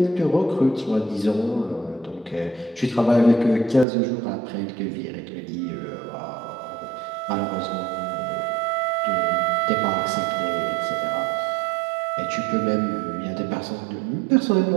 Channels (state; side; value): drops out; left; at 3.9 s